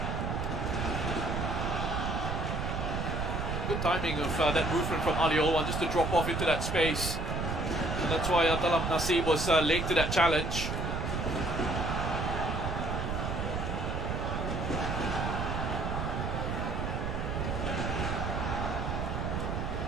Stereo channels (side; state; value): right; noise; rumble, 2 dB below the sound